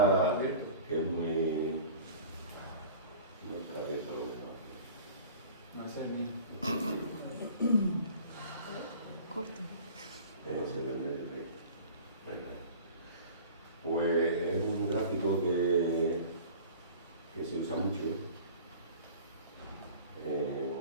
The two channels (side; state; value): both; inverted; correlation -0.41